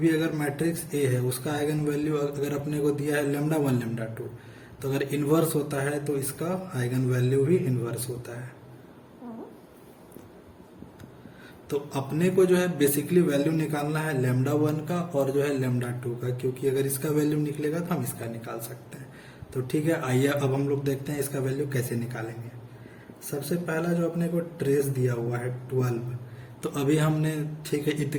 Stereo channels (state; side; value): identical; both; correlation 1.00